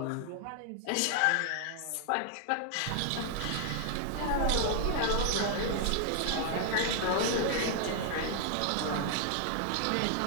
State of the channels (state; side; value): different; both; correlation 0.00